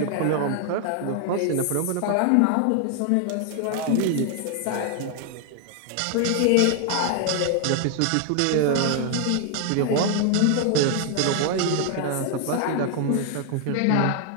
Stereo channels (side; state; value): both; different; correlation 0.00